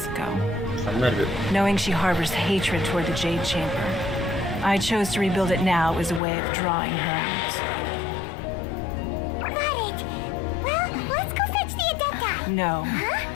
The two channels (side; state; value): right; drops out; at 6.2 s